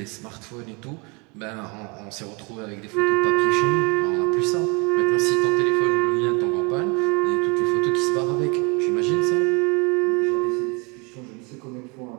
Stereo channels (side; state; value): left; quieter; 30.7 dB